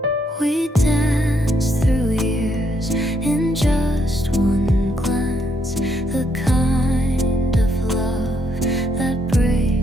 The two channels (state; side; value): normal; both; correlation 0.74